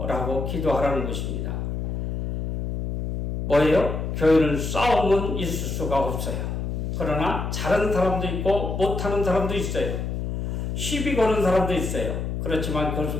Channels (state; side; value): noise; left; hum, 3 dB below the sound